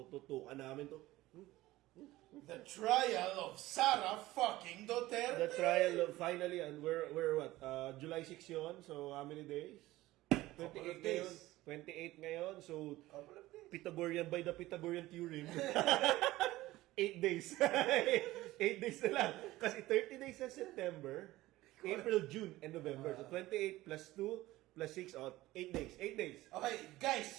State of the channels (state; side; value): quieter; left; 17.4 dB